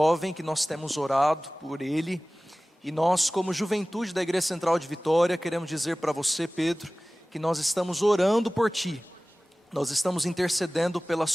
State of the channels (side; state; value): both; normal; correlation 0.98